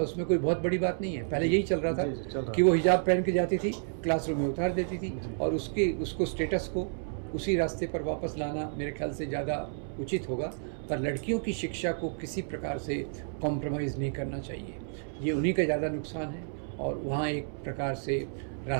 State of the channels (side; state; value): left; silent; 57 dB below the other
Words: कोई बहुत बड़ी बात नहीं है। पहले यही चल रहा था कि वो हिजाब पहन के जाती थी, क्लासरूम में उतार देती थी, और उसको स्टेटस को उसी रास्ते पर वापस लाना मेरे ख्याल से ज़्यादा उचित होगा। पर लड़कियों की शिक्षा को किसी प्रकार से कॉम्प्रोमाइज़ नहीं करना चाहिए, ये उन्हीं का ज़्यादा नुकसान है। और वहाँ एक प्रकार से